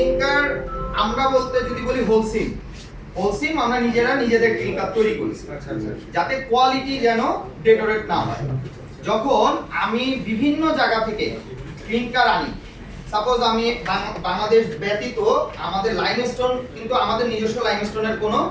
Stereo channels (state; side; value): identical; both; correlation 1.00